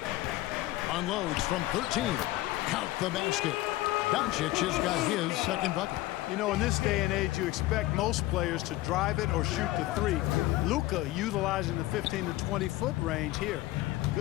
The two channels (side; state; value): right; quieter; 17.4 dB